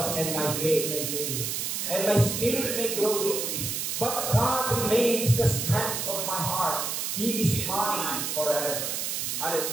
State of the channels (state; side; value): noise; right; hiss, 2 dB below the sound